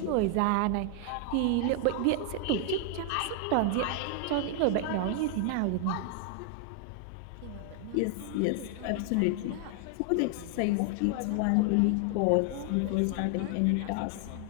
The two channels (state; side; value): different; both; correlation 0.00